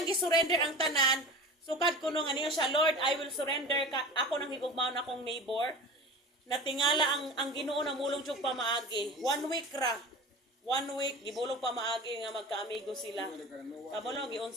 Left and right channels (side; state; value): both; normal; correlation 0.34